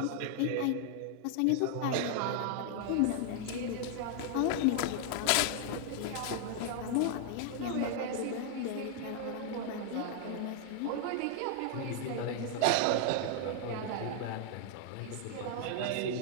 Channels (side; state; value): both; different; correlation 0.00